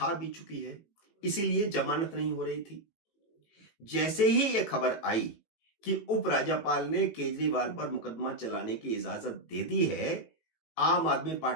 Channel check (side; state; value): right; late; 18 ms